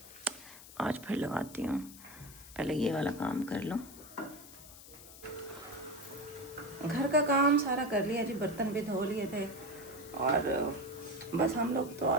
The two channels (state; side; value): noise; left; hiss, 17 dB below the sound